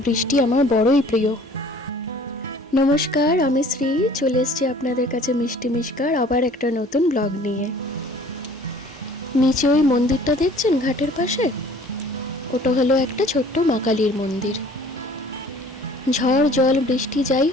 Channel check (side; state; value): both; normal; correlation 0.51